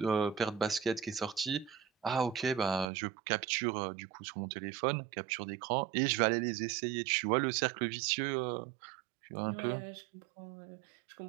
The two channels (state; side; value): drops out; left; at 2.9 s